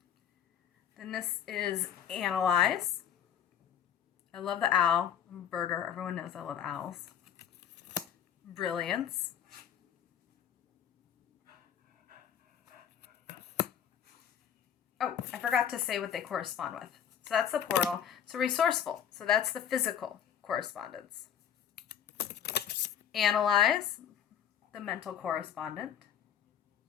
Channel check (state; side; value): quieter; right; 9.2 dB